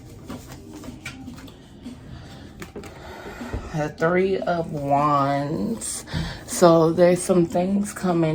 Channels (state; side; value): identical; both; correlation 1.00